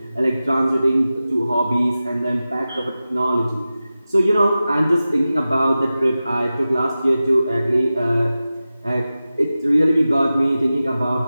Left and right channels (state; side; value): inverted; both; correlation -0.95